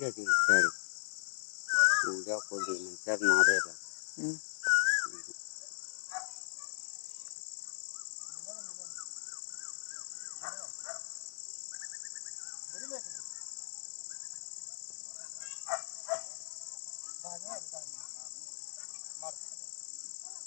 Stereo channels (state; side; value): silent; right; digital silence